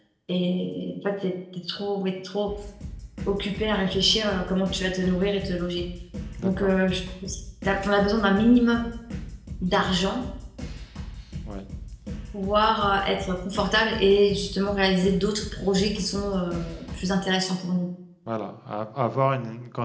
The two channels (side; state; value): both; identical; correlation 1.00